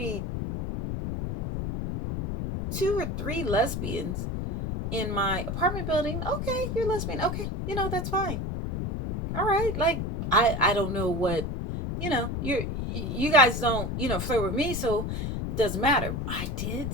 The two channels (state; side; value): noise; left; rumble, 3 dB below the sound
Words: 2 or 3 lesbians in my apartment building. Okay, you're lesbian. Okay, that's fine. All right. Like, I don't know what, you guys don't, flirt with me, so it doesn't matter. I did